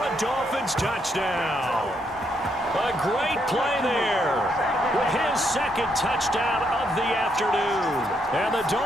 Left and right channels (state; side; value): normal; both; correlation 0.76